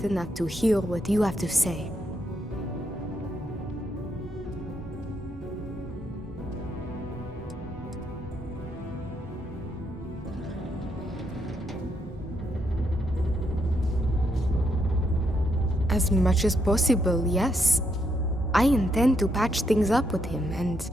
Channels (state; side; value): normal; both; correlation 0.77